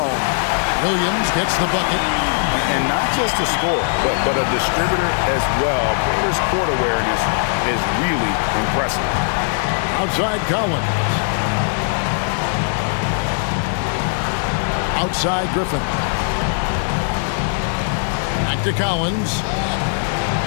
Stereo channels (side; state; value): right; silent; digital silence